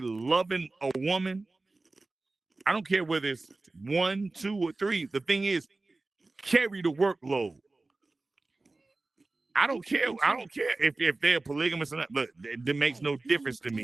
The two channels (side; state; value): left; quieter; 3.3 dB